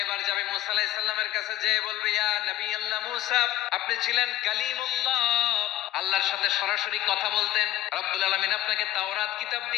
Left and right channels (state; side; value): quieter; right; 14.1 dB